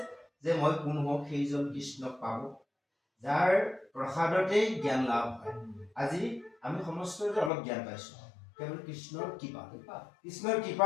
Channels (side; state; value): right; drops out; at 7.5 s